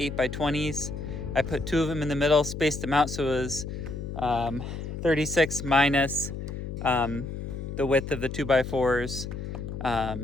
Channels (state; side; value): noise; left; hum, 7 dB below the sound